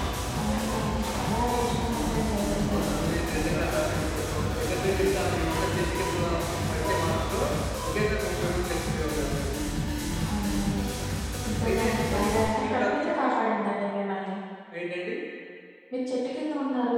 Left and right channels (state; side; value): identical; both; correlation 1.00